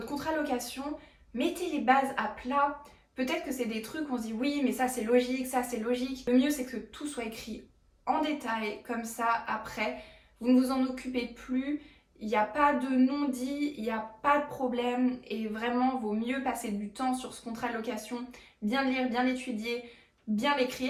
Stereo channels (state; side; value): identical; both; correlation 1.00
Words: contrat de location, mettez les bases à plat. Peut-être que c'est des trucs où on se dit oui mais ça c'est logique, ça c'est logique. Le mieux c'est que tout soit écrit en détail, comme ça après, vous ne vous en occupez plus. Il n'y a pas de non-dit, il n'y a pas de problème et vraiment vaut mieux passer du temps sur ce contrat de location, bien le lire, bien l'étudier, bien